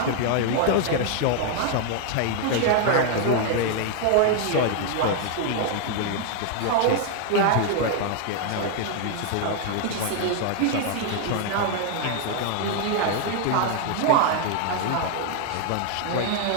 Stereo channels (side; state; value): both; different; correlation 0.00